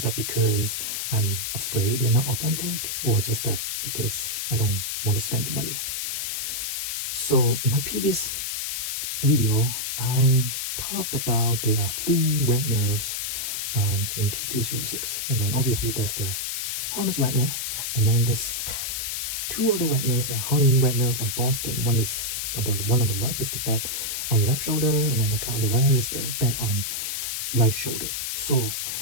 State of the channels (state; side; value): noise; left; hiss, 2 dB below the sound